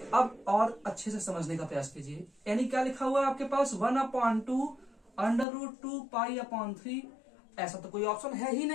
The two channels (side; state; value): right; drops out; at 5.5 s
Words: अब और अच्छे से समझने का प्रयास कीजिए, यानी क्या लिखा हुआ है आपके पास, 1/2 √2 पाई अपॉन 3। ऐसा तो कोई ऑप्शन है ही